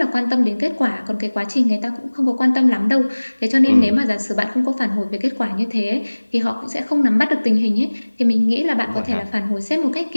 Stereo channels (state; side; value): inverted; both; correlation -1.00